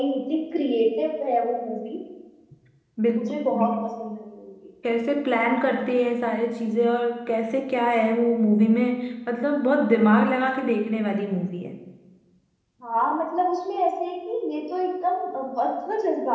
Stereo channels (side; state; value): both; identical; correlation 1.00